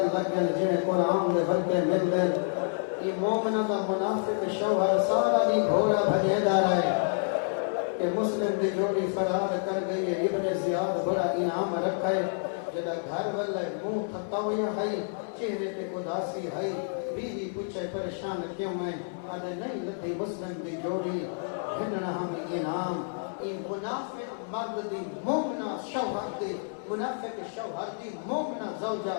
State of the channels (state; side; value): silent; right; 59 dB below the other